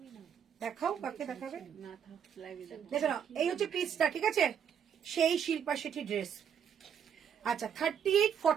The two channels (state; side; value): quieter; left; 8.2 dB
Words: না। দেখাও, কাকে দেখাবে? না থাক লাইভে দেখো না, এই হচ্ছে পিসটা। ঠিক আছে, সেই শিল্পা শেঠি ড্রেস। আচ্ছা